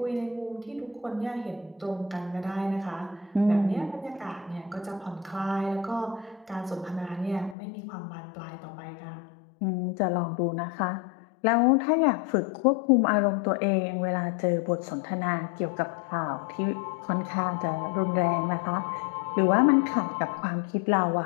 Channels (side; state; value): right; drops out; at 7.6 s